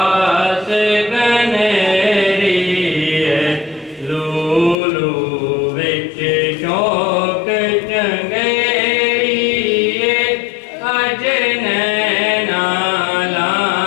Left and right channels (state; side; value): drops out; right; at 4.8 s